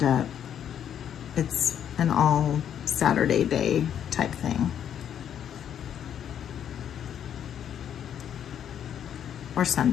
up, it's an all Saturday day type thing. Or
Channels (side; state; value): right; quieter; 9.3 dB